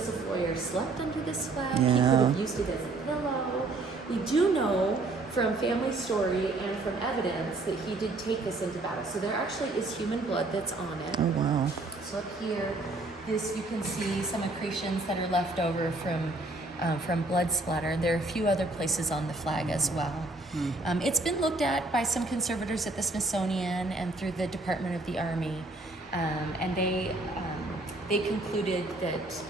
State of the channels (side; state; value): left; quieter; 3.0 dB